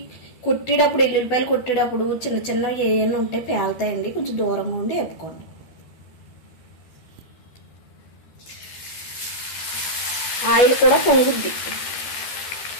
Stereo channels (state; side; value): late; right; 13 ms